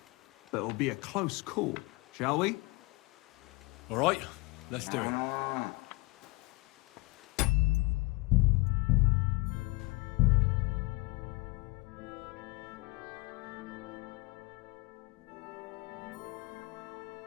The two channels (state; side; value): quieter; right; 25.6 dB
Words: But it'll be a close call, shall we? All right. Let's do it.